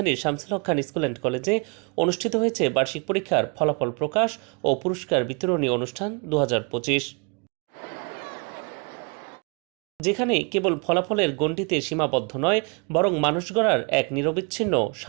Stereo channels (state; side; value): quieter; left; 34.5 dB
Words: শামসুল হক খান স্কুল অ্যান্ড কলেজে অনুষ্ঠিত হয়েছে বার্ষিক পরীক্ষার ফলাফল প্রকাশ ও পুরস্কার বিতরণী অনুষ্ঠান 2025, যেখানে কেবল ফলাফলের গণ্ডিতে সীমাবদ্ধ নয়, বরং মানুষ গড়ার এক নিরবিচ্ছিন্ন